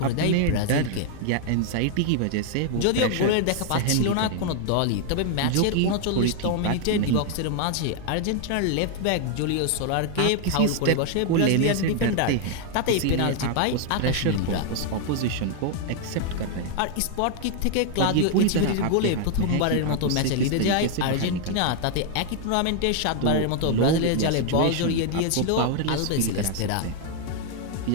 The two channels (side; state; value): both; different; correlation 0.00